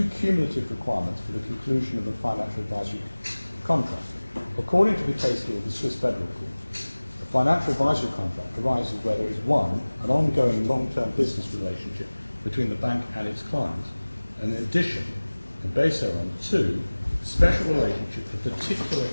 cumulative requirements for the conclusion of a financial advisory contract. According to the case law of the Swiss Federal Court, a financial advisory contract arises where there is one, an ongoing long-term business relationship between the bank and its client, and in addition, and based thereon, two, a special relationship of particular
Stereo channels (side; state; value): both; inverted; correlation -1.00